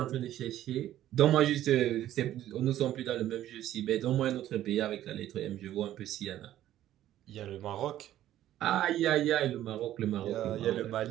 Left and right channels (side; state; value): left; quieter; 12.8 dB